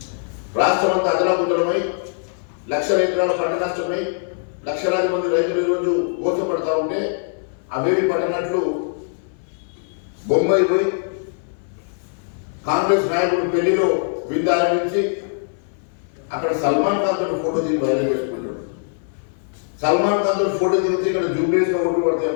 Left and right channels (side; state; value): right; silent; 60 dB below the other